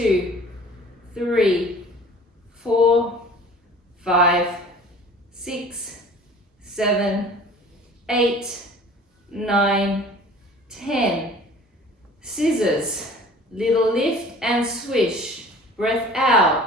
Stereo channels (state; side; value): normal; both; correlation 0.46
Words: 3, 4, 5, 6, 7, 8, 9, 10. Scissors, little lift and swish. Breath out,